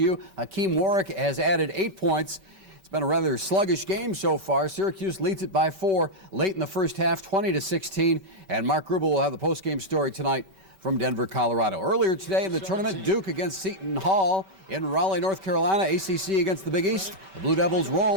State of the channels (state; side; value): late; left; 5.2 ms